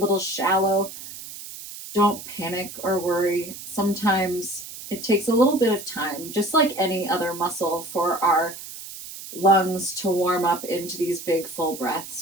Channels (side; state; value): right; noise; hiss, 12 dB below the sound